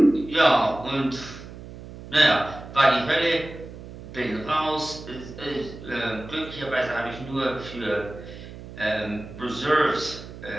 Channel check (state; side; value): noise; right; hum, 14 dB below the sound